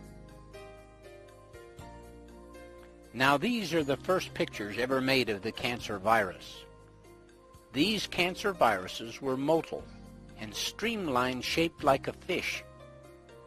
Now these are the first pictures ever made of the cancer virus. These cancer viruses were motile and streamlined, shaped like a fish.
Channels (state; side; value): identical; both; correlation 1.00